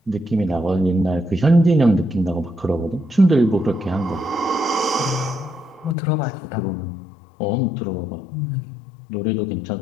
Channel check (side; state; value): right; drops out; at 6.0 s